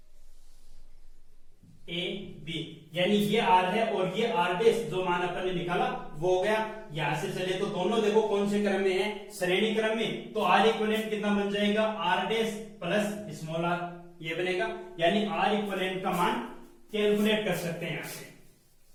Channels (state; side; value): identical; both; correlation 1.00